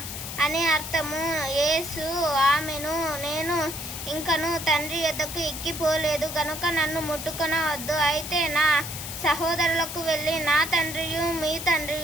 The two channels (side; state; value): left; noise; hiss, 8 dB below the sound